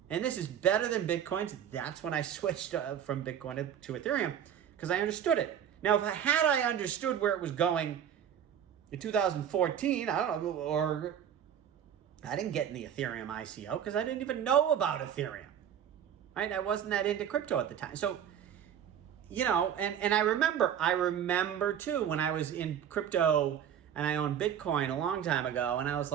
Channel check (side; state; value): left; quieter; 9.2 dB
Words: And this is better than Bitcoin's. That's when I switched from Bitcoin to Ethereum, because I understood it. Now, if I understood where it was going in 2014, I don't know, or I didn't get in the Ethereum ICO because I didn't even know about Ethereum, right? I wasn't that into crypto at the time. So, you know, and I remember too, when I was in crypto and I owned Bitcoin a long time ago, and I was